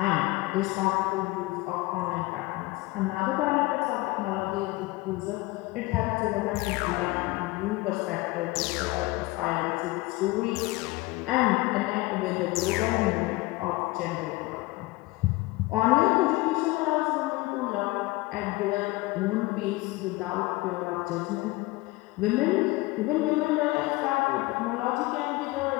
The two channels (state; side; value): quieter; right; 21.1 dB